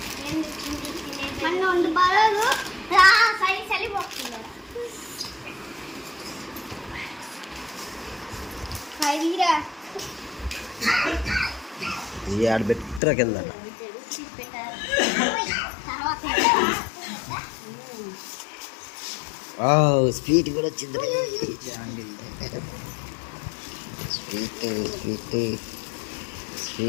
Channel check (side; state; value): right; drops out; at 13.0 s